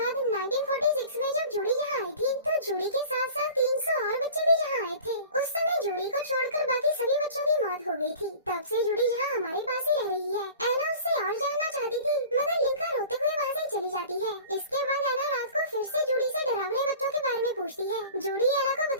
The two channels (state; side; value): inverted; both; correlation -0.42